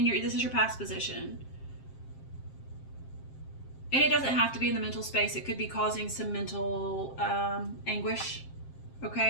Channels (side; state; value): right; late; 7.6 ms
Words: is your past position. And it doesn't have to be in the mental space. It could be causing some mental anguish,